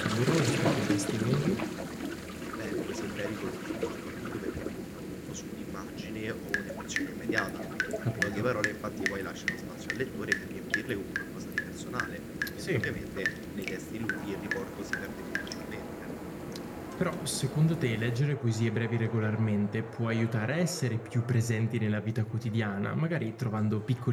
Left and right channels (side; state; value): both; identical; correlation 1.00